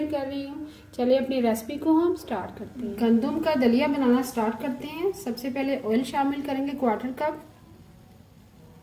कर रही हूँ। चलिए अपनी रेसिपी को हम स्टार्ट करते हैं। गंदम का दलिया बनाना स्टार्ट करते हैं। सबसे पहले ऑयल शामिल करेंगे 1/4 कप।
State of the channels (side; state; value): both; identical; correlation 1.00